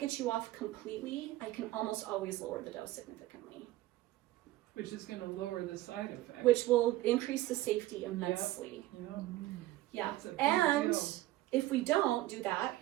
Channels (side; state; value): left; quieter; 16.4 dB